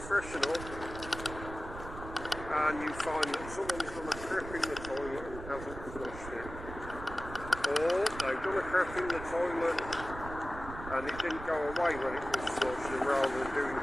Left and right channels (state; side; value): noise; right; rumble, 11 dB below the sound